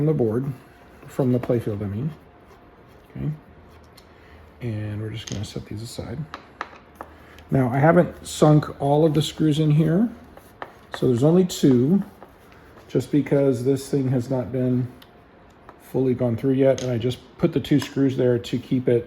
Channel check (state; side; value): identical; both; correlation 1.00